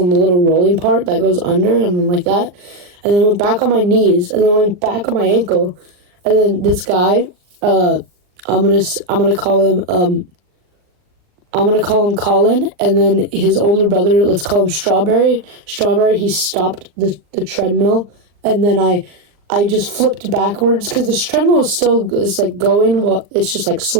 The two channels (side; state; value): left; late; 39 ms